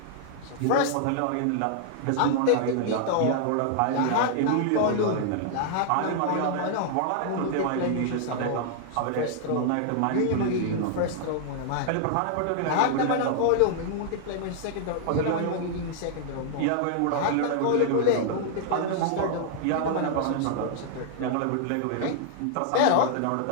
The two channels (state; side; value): different; both; correlation -0.01